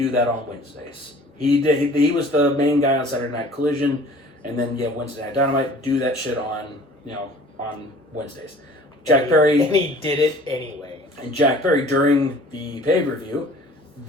that on Wednesdays." He was the main guy on Saturday Night Collision, and then Wednesday Night Dynamite. Do that shit on Wednesdays. Jack Perry, and he did it anyway. And Jack Perry, during the pay-per-view,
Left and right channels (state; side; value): normal; both; correlation 0.49